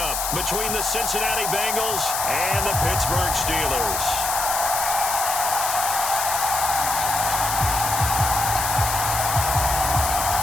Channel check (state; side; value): noise; left; hiss, 2 dB below the sound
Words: between the Cincinnati Bengals and the Pittsburgh Steelers.